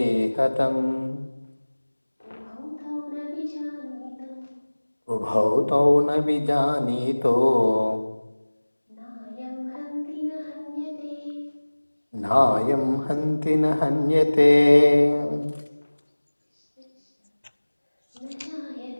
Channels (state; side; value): inverted; both; correlation -1.00